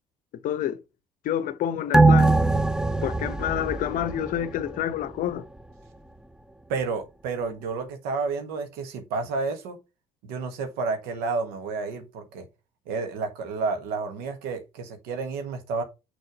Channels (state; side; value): normal; both; correlation 0.61